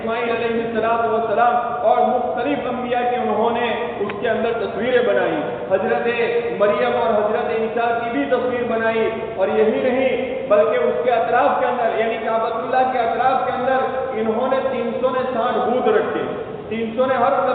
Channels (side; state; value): both; identical; correlation 1.00